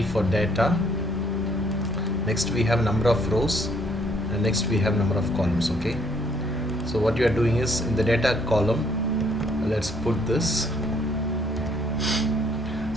for data, next we have number of rows, and next we have number of columns. Okay, so what you are doing is, in the data column, let's put this.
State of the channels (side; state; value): both; normal; correlation 0.65